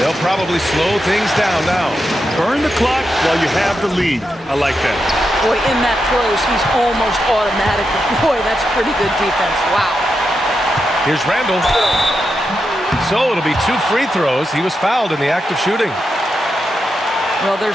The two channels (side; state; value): both; normal; correlation 0.86